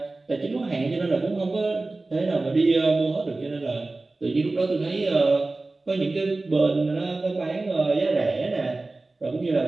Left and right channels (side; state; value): left; quieter; 3.2 dB